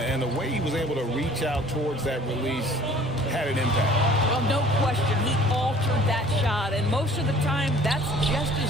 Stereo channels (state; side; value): normal; both; correlation 0.51